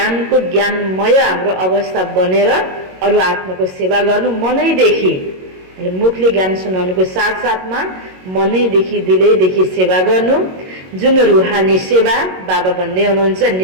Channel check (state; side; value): late; left; 22 ms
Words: ज्ञानमय हाम्रो अवस्था बनेर अरू आत्माको सेवा गर्नु मनैदेखि, मुखले ज्ञान सुनाउनुको साथसाथमा मनैदेखि दिलैदेखि सेवा गर्नु, जुन रुहानी सेवा बाबा भन्दै हुनुहुन्छ